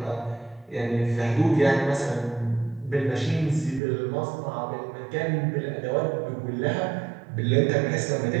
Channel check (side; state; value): left; drops out; at 3.8 s